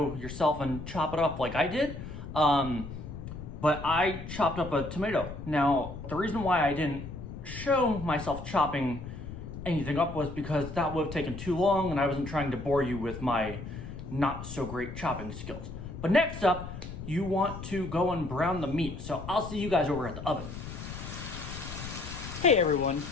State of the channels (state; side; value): noise; left; rumble, 10 dB below the sound